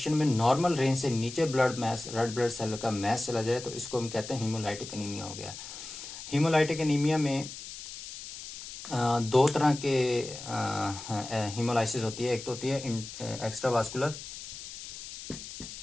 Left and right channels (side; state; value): left; noise; hiss, 11 dB below the sound